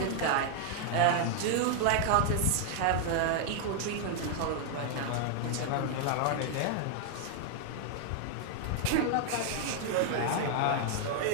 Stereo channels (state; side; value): different; both; correlation 0.00